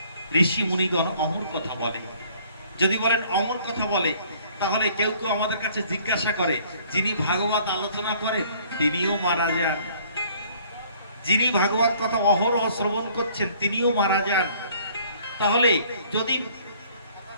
ঋষি মুনিগণ অমর কথা বলে। যদি বলেন অমর কথা বলে, তাহলে কেউ কেউ আমাদের কাছে জিজ্ঞাসা করে, যিনি ভাগবত আলোচনা করেন তিনিও মারা যান, যিনি ভাগবত কথা অহরহ শ্রবণ করছেন তিনিও মারা যান, তাহলে যদি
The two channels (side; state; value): both; inverted; correlation -0.58